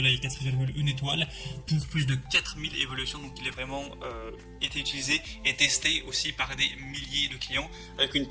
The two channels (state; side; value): identical; both; correlation 1.00